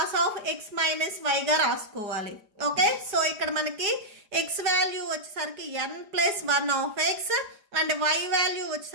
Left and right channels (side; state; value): left; late; 4.9 ms